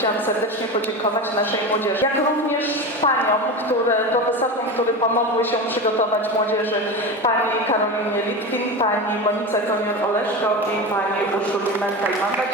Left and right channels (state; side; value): normal; both; correlation 0.24